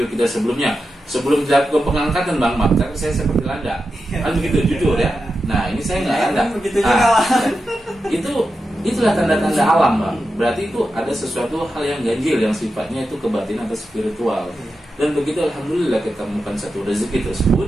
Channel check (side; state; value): both; normal; correlation 0.90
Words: kita sebelumnya, sebelum dilakukan pengangkatan bang, maka saya seperti landa, kan begitu jujur ya. Nah ini saya nggak landa. Begitu juga. Itulah tanda-tanda alam bang. Berarti itu ada sesuatu hal yang ganjil yang sifatnya itu kebatinan atau spiritual. Dan begitu alhamdulillah kita temukan satu rezeki